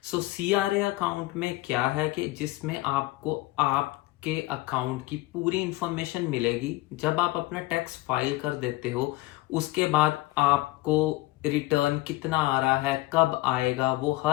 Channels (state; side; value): quieter; right; 19.4 dB